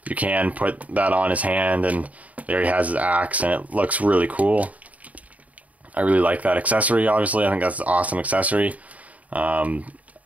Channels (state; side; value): late; left; 0.070 ms